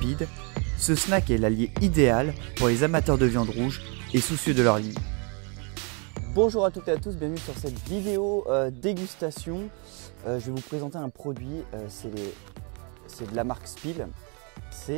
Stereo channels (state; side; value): quieter; left; 34.8 dB